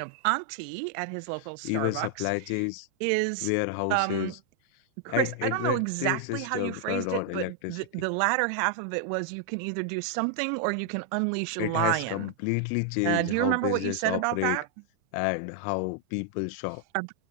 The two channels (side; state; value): both; different; correlation 0.00